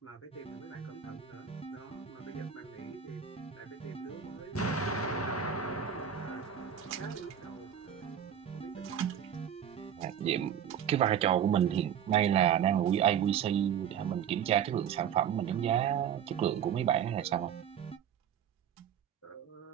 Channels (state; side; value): quieter; left; 8.8 dB